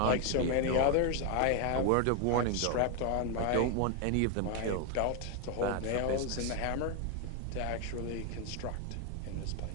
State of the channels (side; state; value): both; different; correlation 0.01